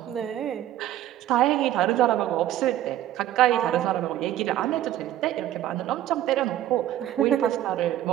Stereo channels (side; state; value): left; quieter; 12.9 dB